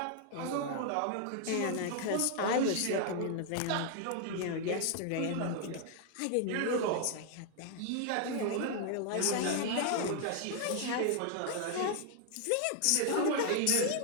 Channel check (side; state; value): both; different; correlation 0.00